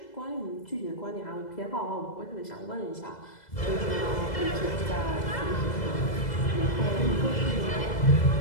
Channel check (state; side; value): late; right; 2.0 ms